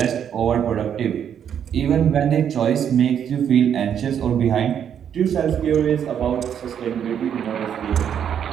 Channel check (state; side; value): quieter; left; 8.7 dB